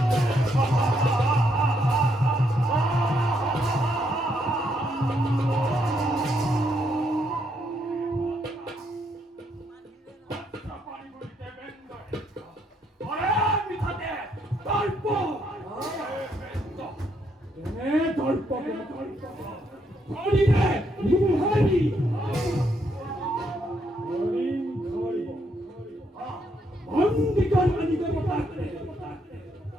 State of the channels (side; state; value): both; normal; correlation 0.75